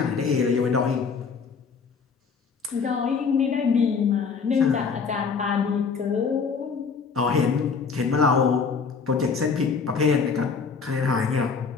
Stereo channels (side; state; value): right; quieter; 5.5 dB